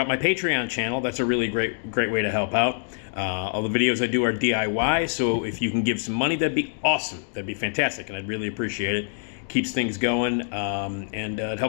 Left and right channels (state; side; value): silent; right; digital silence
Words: my Patreon channel. That's a really great way to help out. All the videos I do are DIY, so if you can give some money, that'd be awesome. That'd be fantastic, and I'd really appreciate it. Keeps things going, and it